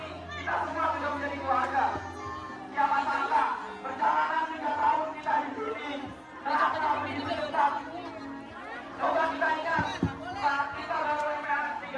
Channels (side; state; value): both; identical; correlation 1.00